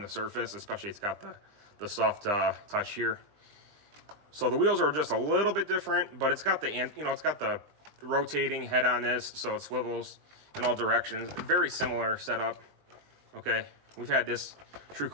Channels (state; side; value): late; left; 20 ms